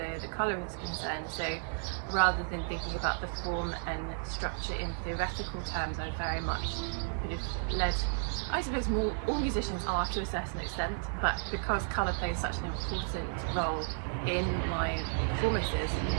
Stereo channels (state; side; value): silent; left; digital silence